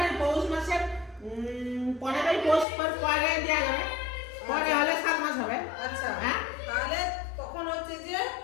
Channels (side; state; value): right; drops out; at 2.7 s